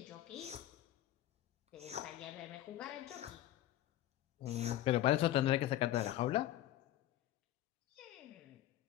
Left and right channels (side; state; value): right; quieter; 13.6 dB